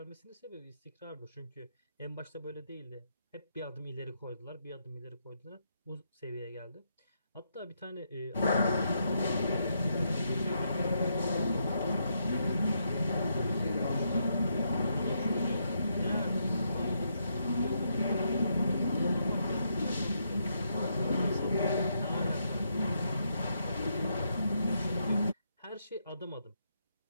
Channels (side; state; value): both; inverted; correlation -0.79